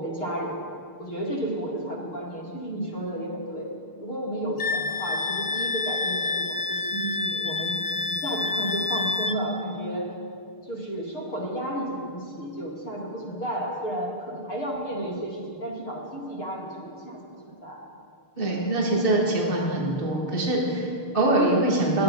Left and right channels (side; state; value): right; late; 6.6 ms